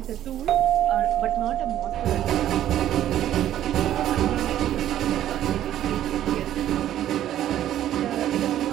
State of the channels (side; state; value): left; quieter; 12.0 dB